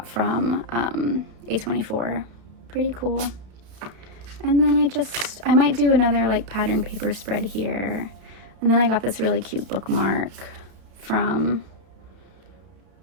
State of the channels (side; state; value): left; late; 32 ms